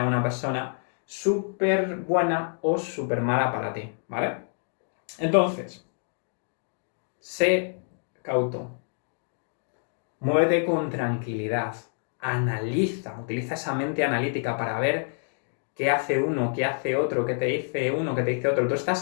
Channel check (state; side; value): silent; right; 59 dB below the other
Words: una persona súper buena o súper mala para ti, ¿vale? Entonces, sé cauto. Muévete con tranquilidad. Analiza, utiliza esa mente analítica para ver qué hace uno, qué hace otro, qué te dice uno, qué te dice otro. Tú